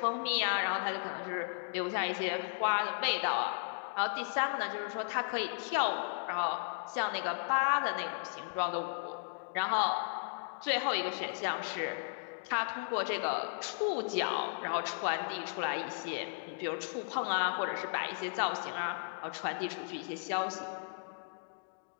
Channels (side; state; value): right; silent; digital silence